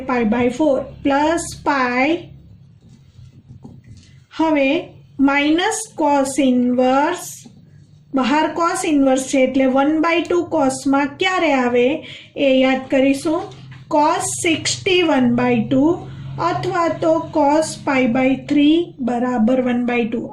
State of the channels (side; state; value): both; identical; correlation 1.00